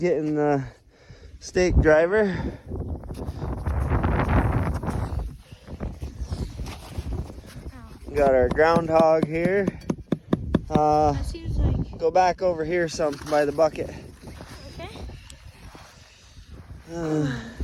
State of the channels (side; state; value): both; identical; correlation 1.00